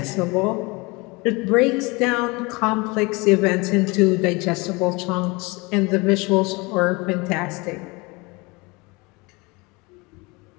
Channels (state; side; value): quieter; right; 26.0 dB